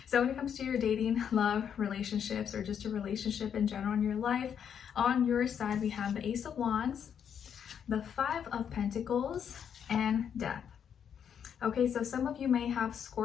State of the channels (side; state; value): right; quieter; 8.2 dB